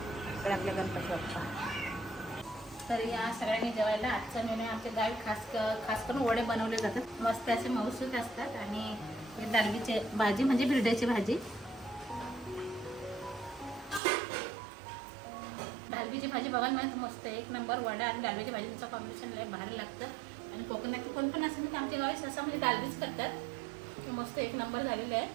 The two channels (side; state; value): left; drops out; at 14.0 s